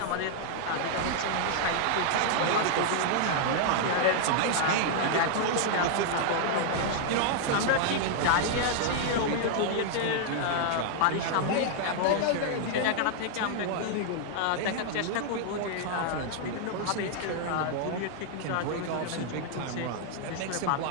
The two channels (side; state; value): both; different; correlation -0.01